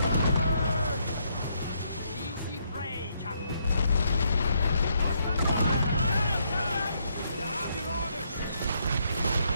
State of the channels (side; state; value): both; inverted; correlation -0.74